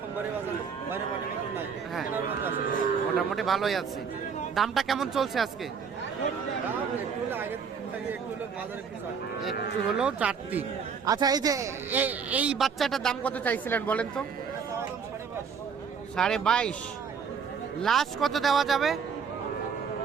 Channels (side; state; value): left; quieter; 6.3 dB